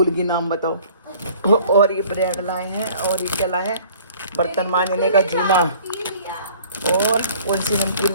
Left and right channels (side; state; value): both; inverted; correlation -0.52